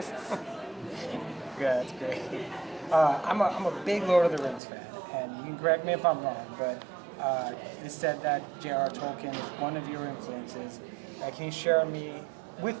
Yeah, that's great. I'm a big Lord of the Rings fan, and you can correct me if I'm wrong, but it is said that J.R. Tolkien is one of your influences. Can you share with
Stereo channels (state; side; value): drops out; left; at 4.6 s